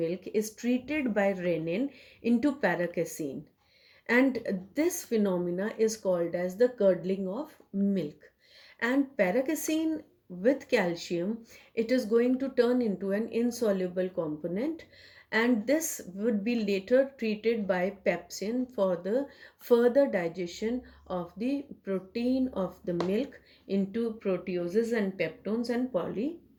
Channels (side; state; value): both; identical; correlation 1.00